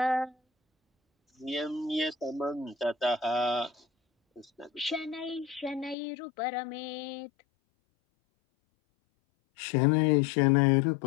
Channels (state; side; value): drops out; right; at 6.0 s